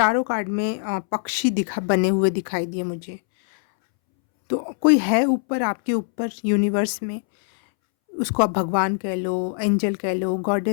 कार्ड में पक्षी बने हुए दिखाई दिए मुझे। तो कोई है ऊपर, आपके ऊपर यूनिवर्स में, उसको आप भगवान कह लो, एंजल कह लो,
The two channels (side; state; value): right; silent; 64 dB below the other